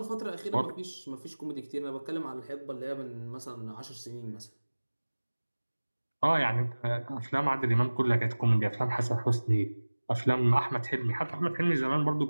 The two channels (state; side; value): inverted; both; correlation -1.00